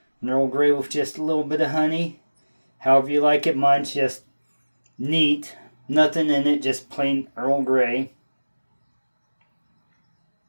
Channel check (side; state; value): both; inverted; correlation -1.00